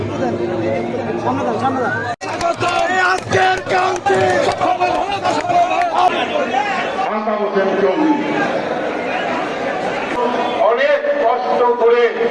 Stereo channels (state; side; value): identical; both; correlation 1.00